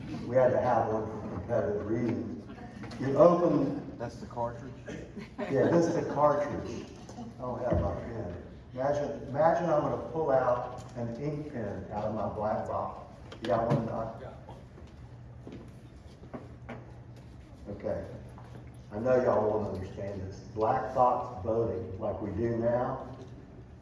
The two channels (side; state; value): both; identical; correlation 1.00